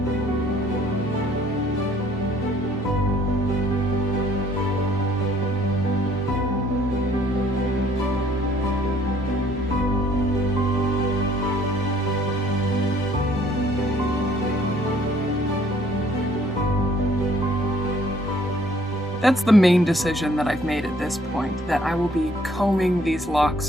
That's the main decision that I've made at this point, that I will be combing these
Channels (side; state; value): both; normal; correlation 0.60